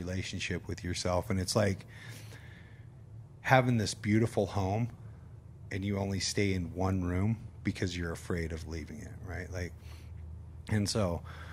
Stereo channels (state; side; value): identical; both; correlation 1.00